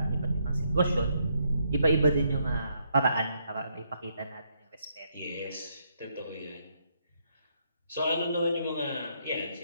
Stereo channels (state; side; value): inverted; both; correlation -0.75